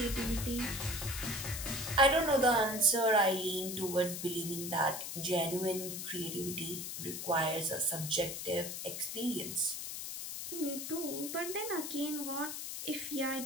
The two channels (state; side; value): noise; left; hiss, 6 dB below the sound